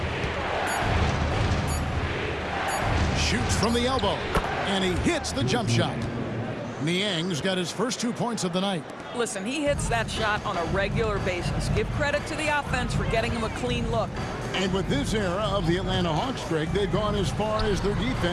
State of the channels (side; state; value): both; identical; correlation 1.00